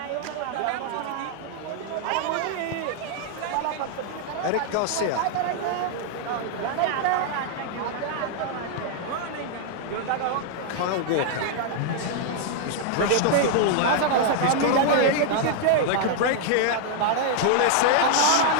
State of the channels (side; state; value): both; different; correlation 0.00